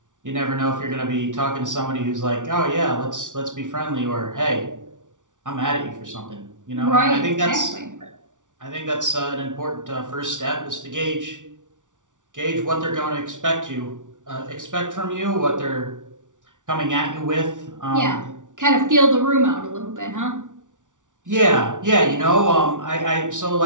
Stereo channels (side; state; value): left; late; 0.87 ms